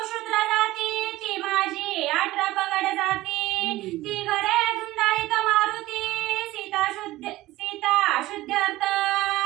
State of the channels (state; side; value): quieter; left; 17.3 dB